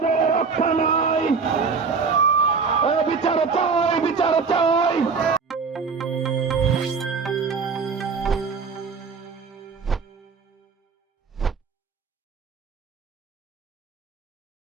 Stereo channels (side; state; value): left; quieter; 5.2 dB